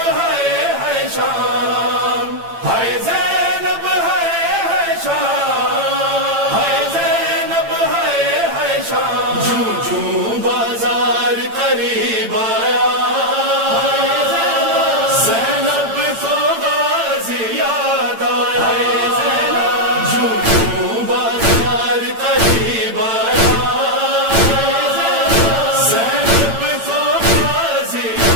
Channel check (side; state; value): left; late; 8.9 ms